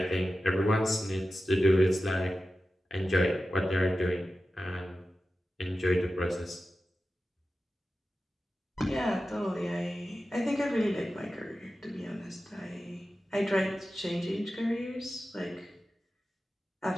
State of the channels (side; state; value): both; normal; correlation 0.93